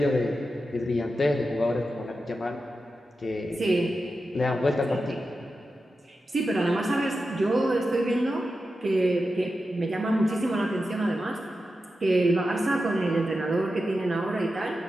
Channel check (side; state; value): both; normal; correlation 0.91